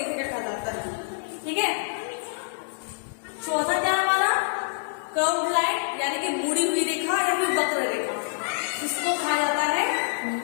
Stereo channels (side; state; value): right; silent; digital silence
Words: रेखा कहा जाता है। ठीक है। चौथा क्या हमारा? कर्व्ड लाइन यानी कि मुड़ी हुई रेखा या फिर वक्र रेखा। इसको कहा जाता है